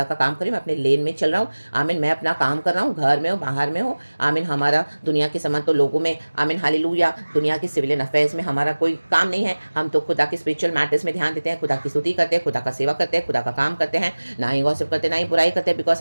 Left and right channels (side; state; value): both; inverted; correlation -1.00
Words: का काम कर रही हूँ, मैं अपने लेन में चल रहा हूँ। आमीन, मैं अपना काम कर रहा हूँ, घर में हो बाहर में हो। आमीन, हमारा दुनिया के समान तो लोगों में, आमीन हालेलुया, दुनिया के सिविलियन अफेयर्स में हमारा कोई काम नहीं है। हम तो खुदा के स्पिरिचुअल मैटर्स में ध्यान देते हैं, खुदा की स्तुति करते हैं, खुदा का सेवा करते हैं, खुदा का काम करते हैं, ना ही गॉसिप करते, ना ही बुराई करते हैं, बिकॉज